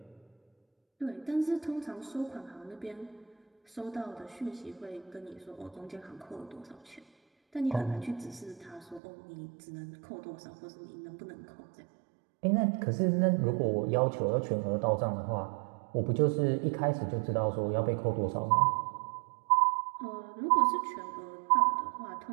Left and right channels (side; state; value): left; drops out; at 9.0 s